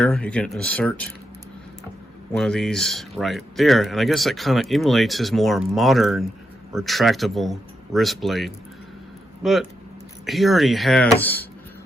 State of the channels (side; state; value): both; normal; correlation 0.84